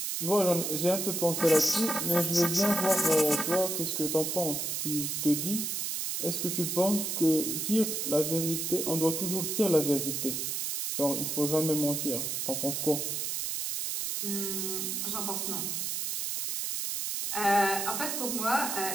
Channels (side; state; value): right; noise; hiss, 2 dB below the sound